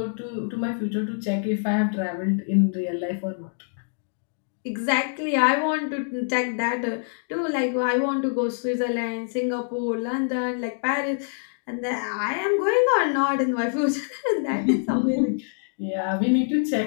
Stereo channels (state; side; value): silent; right; digital silence